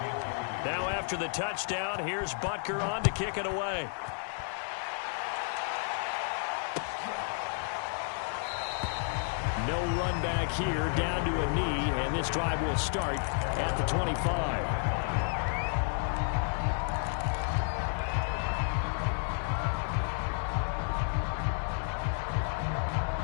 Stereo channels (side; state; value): right; silent; 57 dB below the other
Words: Now after the touchdown, here's Butker on to kick it away. No run back here, down to a knee, and this drive will start at the 25.